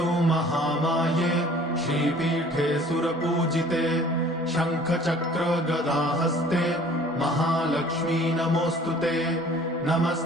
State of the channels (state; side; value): normal; both; correlation 0.51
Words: महामाये श्रीपीठे सुरपूजिते शङ्खचक्र गदाहस्ते महालक्ष्मी नमोऽस्तुते।